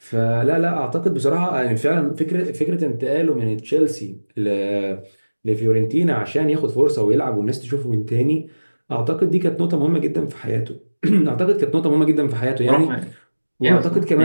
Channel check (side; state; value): both; inverted; correlation -1.00